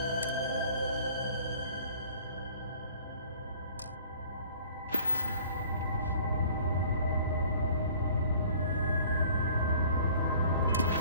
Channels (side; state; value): both; inverted; correlation -0.51